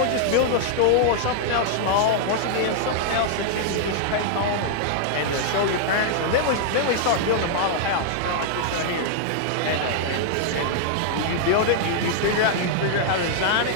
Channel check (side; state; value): both; different; correlation -0.01